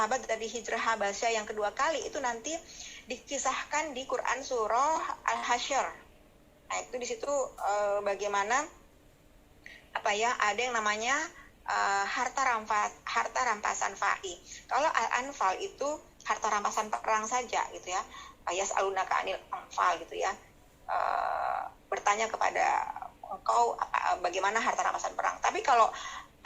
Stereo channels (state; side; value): identical; both; correlation 1.00